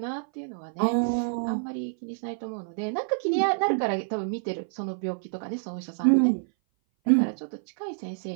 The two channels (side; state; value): left; silent; 58 dB below the other